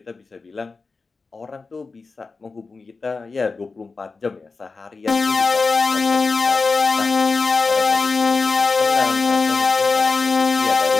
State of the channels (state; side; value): quieter; right; 4.2 dB